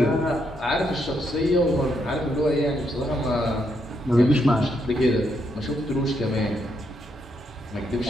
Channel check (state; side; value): normal; both; correlation 0.78